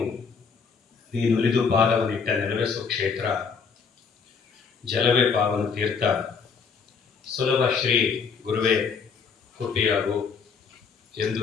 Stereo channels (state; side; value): quieter; right; 5.8 dB